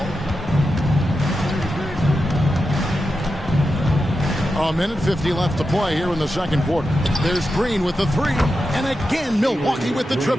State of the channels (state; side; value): normal; both; correlation 0.89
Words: A minute 50 left to play here in the second quarter. There's Green with the 3. And again, Milwaukee with the